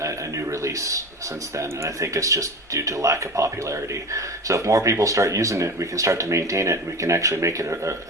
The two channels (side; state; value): both; normal; correlation 0.29